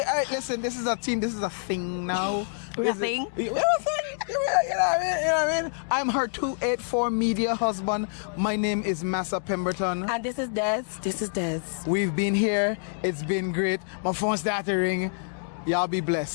Listen, this is a team. This is a thing now. We're a thing? You know what I mean? I'm her 284 media husband. My name is Massa Pemberton. And this is Des. We've been here. It's been great. My phone started to ring. Y'all be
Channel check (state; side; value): silent; right; digital silence